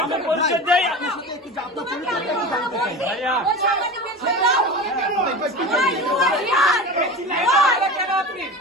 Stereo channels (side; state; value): both; normal; correlation 0.30